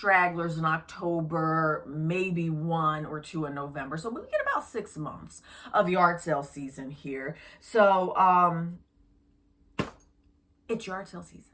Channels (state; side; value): identical; both; correlation 1.00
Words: in October, maybe 1 or 2 in November. So we get about 6 months of yard sale season here. So it's yard sale